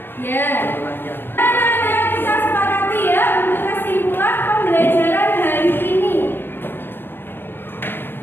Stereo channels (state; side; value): late; right; 0.10 ms